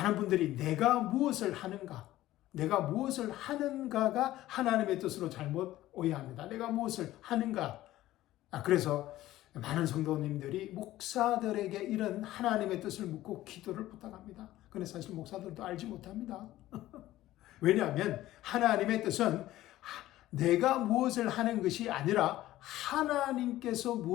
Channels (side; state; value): right; quieter; 15.2 dB